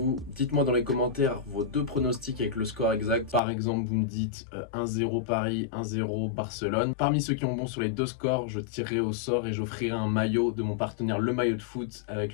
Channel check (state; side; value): drops out; right; at 3.4 s